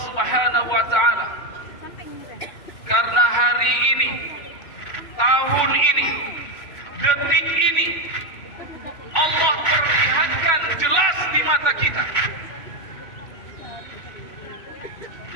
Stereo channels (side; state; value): right; late; 2.9 ms